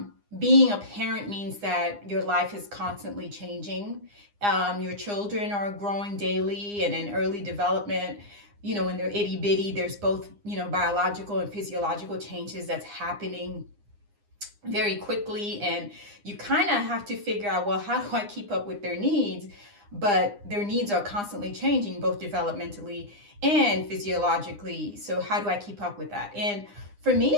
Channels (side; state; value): left; late; 9.8 ms